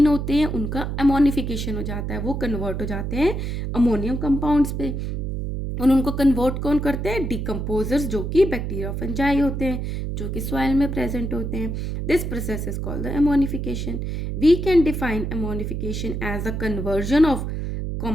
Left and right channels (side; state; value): right; noise; hum, 3 dB below the sound